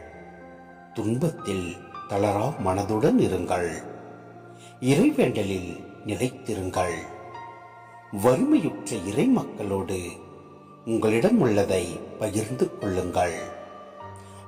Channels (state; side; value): identical; both; correlation 1.00